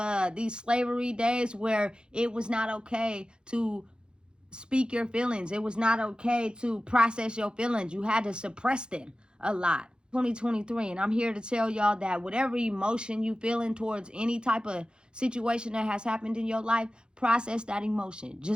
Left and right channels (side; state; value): left; late; 0.050 ms